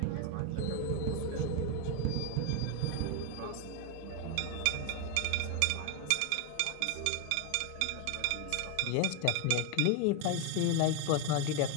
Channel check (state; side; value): different; both; correlation 0.01